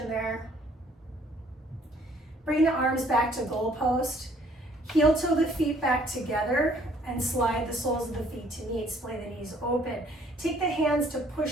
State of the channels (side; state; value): both; normal; correlation 0.60